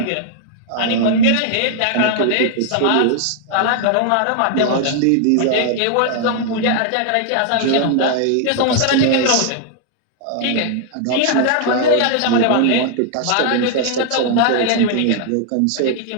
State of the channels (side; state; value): both; different; correlation 0.00